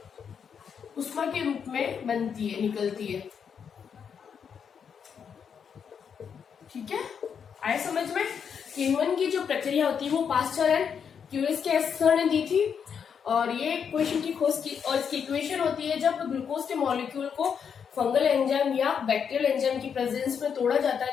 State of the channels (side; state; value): right; quieter; 7.1 dB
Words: उष्मा के रूप में बनती है, निकलती है, ठीक है। आए समझ में? किण्वन की जो प्रक्रिया होती है वो पास्चर एंड क्यूरियस ने दी थी और ये इक्वेशन की खोज की। और इसकी इक्वेशन होती है जब ग्लूकोज के मॉलिक्यूल को फंगल एंजाइम या बैक्टीरियल एंजाइम की प्रेजेंस में तोड़ा जाता है